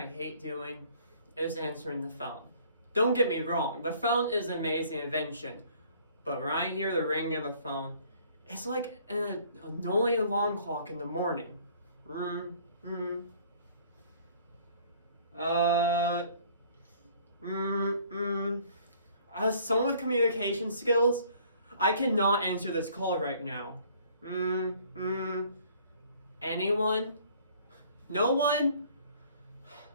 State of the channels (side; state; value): both; inverted; correlation -0.57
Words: hate doing is answering the phone. Don't get me wrong, the phone is an amazing invention, but when I hear the ring of the phone, it's like an annoying alarm clock in the morning. As someone with communication skills, I cannot answer this call right now. Anyone? No one?